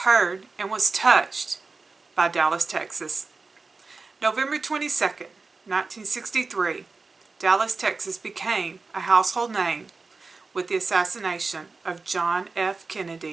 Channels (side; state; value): left; quieter; 4.1 dB